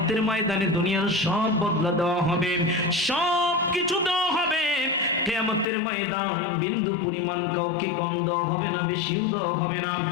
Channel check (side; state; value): right; drops out; at 5.7 s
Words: ময়দানে দুনিয়ার সব বদলা দেওয়া হবে, সব কিছু দেওয়া হবে। কিয়ামতের ময়দান বিন্দু পরিমাণ কাউকে কম দেওয়া হবে না, বেশিও দেওয়া হবে না।